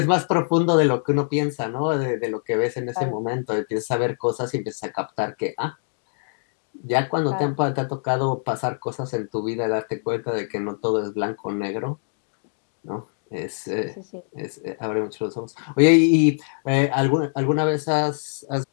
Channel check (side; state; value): right; silent; 60 dB below the other